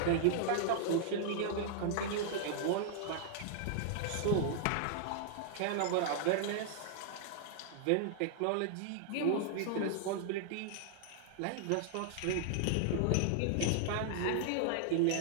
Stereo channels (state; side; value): different; both; correlation -0.01